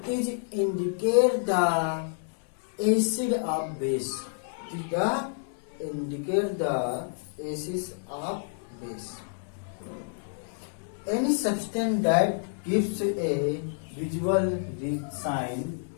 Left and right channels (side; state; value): right; silent; 59 dB below the other